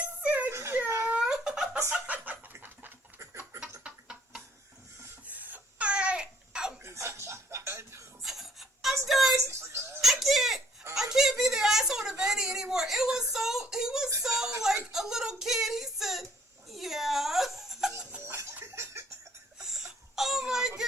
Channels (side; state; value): both; normal; correlation 0.62